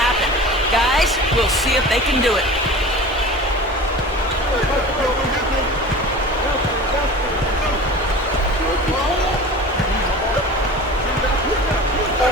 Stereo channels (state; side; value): normal; both; correlation 0.37